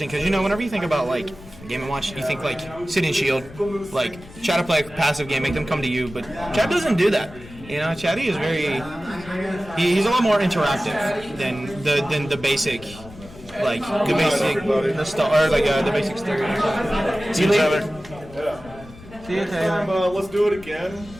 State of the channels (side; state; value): left; noise; rumble, 19 dB below the sound